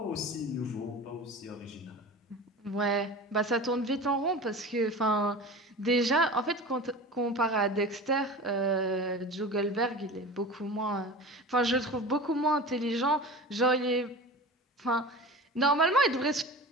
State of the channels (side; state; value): both; normal; correlation 0.34